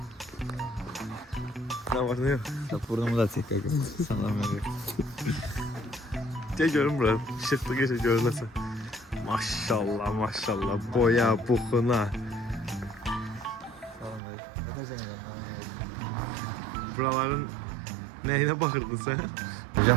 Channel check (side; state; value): left; drops out; at 14.2 s